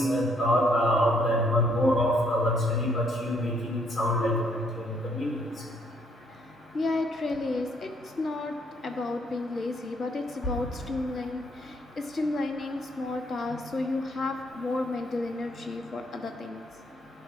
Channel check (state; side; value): normal; both; correlation 0.69